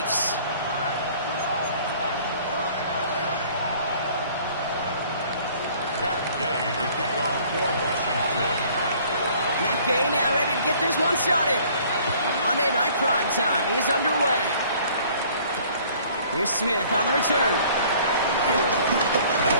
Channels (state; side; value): inverted; both; correlation -0.54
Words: Matt Gay now ready to get this one started. Monday Night Primetime is underway. Here's Smith on the return.